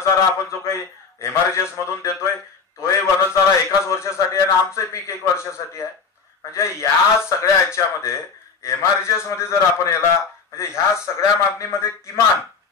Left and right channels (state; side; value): quieter; right; 5.3 dB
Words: आपण जो काही एमआरजीएस मधून देतोय तोही वनचारा एकाच वर्षासाठी आहे आणि आमचं पीक 1 वर्षासाठी आहे. म्हणजे या सगळ्या ह्याच्यामध्ये एमआरजीएस मध्ये जर आपण याला म्हणजे ह्या सगळ्या मागणीमध्ये किमान